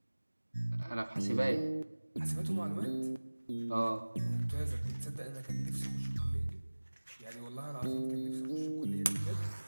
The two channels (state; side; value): inverted; both; correlation -1.00